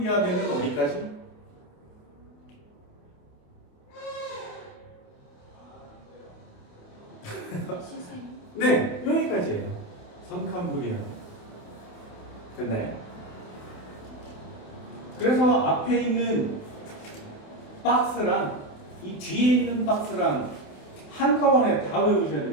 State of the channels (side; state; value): right; late; 28 ms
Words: 어디까지? 네, 여기까지예요. 선캄브리아. 됐나요? 그래서 앞에 있는 박스랑 이 뒤에 있는 박스랑 한꺼번에 다 외우셔야